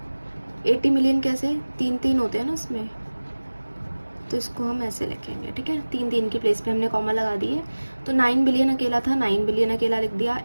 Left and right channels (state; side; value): inverted; both; correlation -1.00